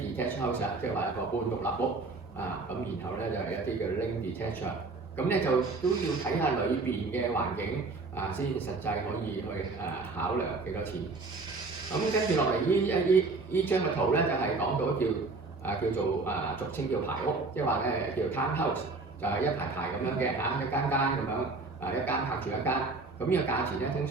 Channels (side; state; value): left; quieter; 3.7 dB